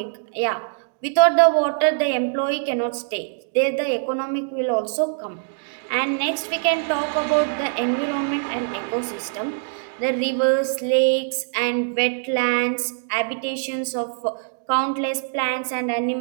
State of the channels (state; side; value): silent; left; digital silence